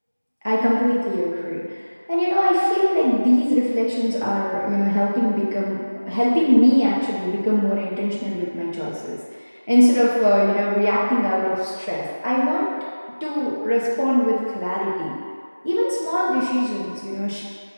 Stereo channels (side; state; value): both; inverted; correlation -1.00